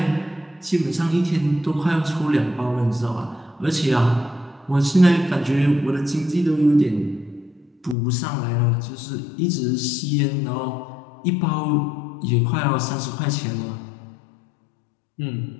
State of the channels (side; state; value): right; drops out; at 8.0 s